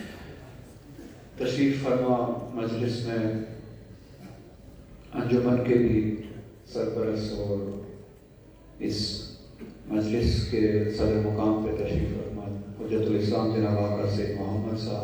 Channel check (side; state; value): both; identical; correlation 1.00